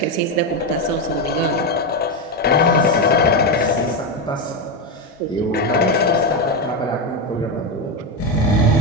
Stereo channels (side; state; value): both; normal; correlation 0.10